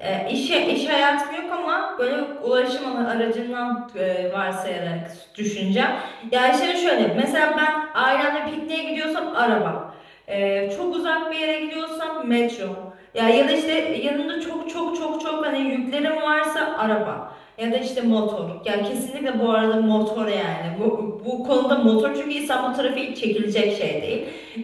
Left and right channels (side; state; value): both; identical; correlation 1.00